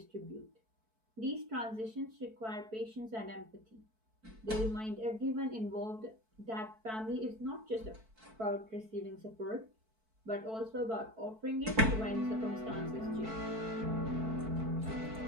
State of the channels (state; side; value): late; left; 4.6 ms